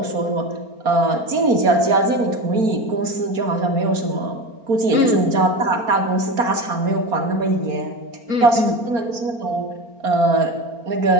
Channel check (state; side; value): late; left; 4.3 ms